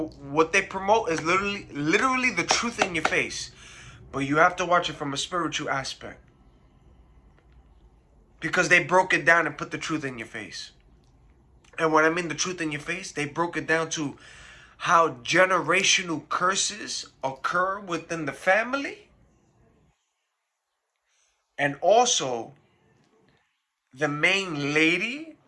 they promote is literally the truth in your face. But you have to watch it from a spiritual aspect. Because they broke it down and put the truth in your face. And when I mean the truth in your face, they broke it down to how generational curses occur within the family. And also, the main lady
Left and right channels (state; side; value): identical; both; correlation 1.00